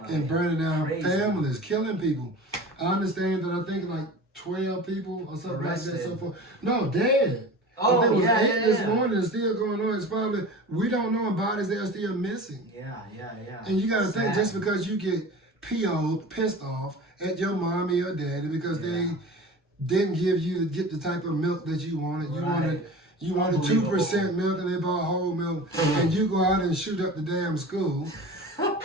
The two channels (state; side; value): normal; both; correlation 0.36